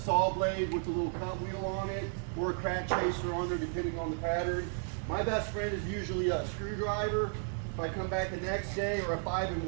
blade with a little cut wheel on it or a crack chaser on there, depending on the pattern. My best friend is usually a screwdriver. If I come back the next day, or a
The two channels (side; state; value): left; silent; 55 dB below the other